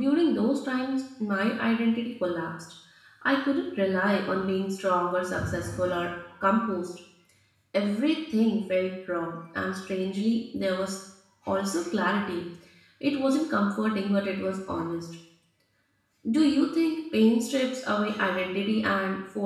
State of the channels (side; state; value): both; identical; correlation 1.00